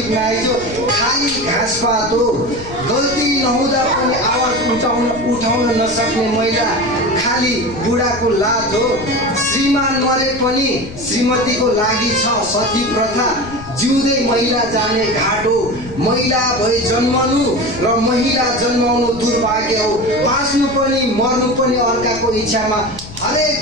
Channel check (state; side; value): noise; left; rumble, 15 dB below the sound